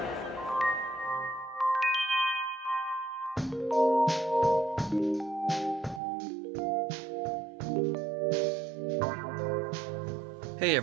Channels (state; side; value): drops out; left; at 6.0 s